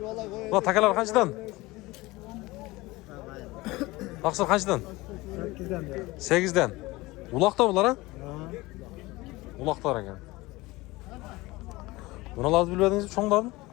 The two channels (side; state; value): right; quieter; 20.9 dB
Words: Bu takalar qanchadan? Taqsir qanchadan? 8dan. Uloqda bular, ha? Uloqlar ekan. Bunalarni bilmadingizmi, cho'nglarni?